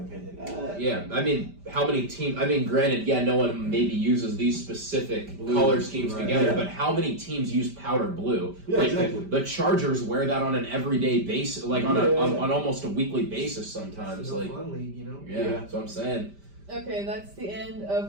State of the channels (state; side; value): late; left; 5.1 ms